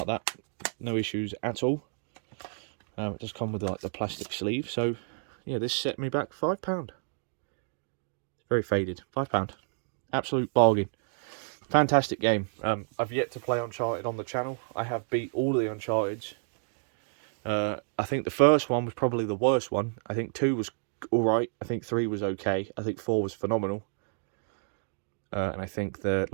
that. No issues at all. It does come with like the plastic sleeve. So yeah, this set me back £5. It's very faded. £5. Absolute bargain. Fantastic game. I've yet to play Uncharted on the channel. I have beat all of the Uncharteds. I think the first one was probably the worst one. I think 2 was alright. I think 3 was okay. I think 4 was phenomenal. And I think the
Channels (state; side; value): silent; left; digital silence